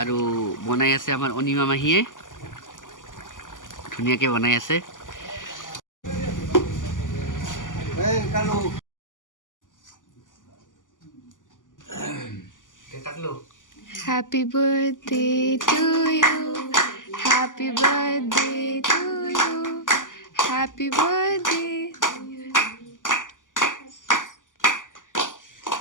বনাই আছে আমাৰ অনিমা মাহীয়ে, ধুনীয়াকৈ বনাই আছে। Happy birthday to you. Happy birthday to you. Happy birthday.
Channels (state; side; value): late; right; 0.88 ms